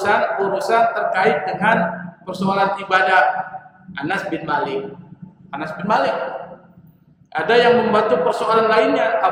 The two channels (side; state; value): both; identical; correlation 1.00